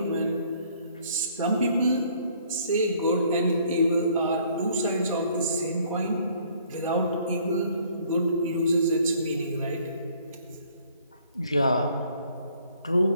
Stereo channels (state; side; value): inverted; both; correlation -0.61